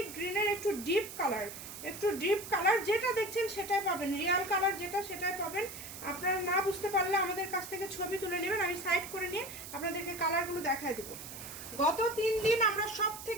গ্রিনের একটু ডিপ কালার, একটু ডিপ কালার। যেটা দেখছেন সেটাই পাবেন, রিয়াল কালার যেটা সেটাই পাবেন। আপনারা না বুঝতে পারলে আমাদের কাছ থেকে ছবি তুলে নেবেন, আমি সাইড করে নিয়ে আপনাদেরকে কালারগুলো দেখায় দেবো। গত 3 দিন আমরা সব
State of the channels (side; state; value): right; noise; hiss, 11 dB below the sound